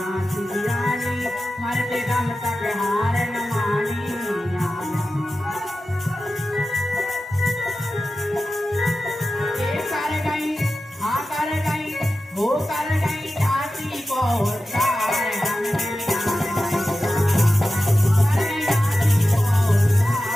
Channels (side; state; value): both; normal; correlation 0.93